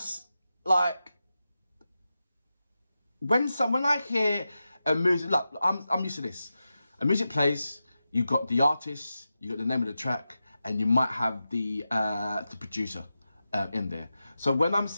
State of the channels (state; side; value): inverted; both; correlation -0.92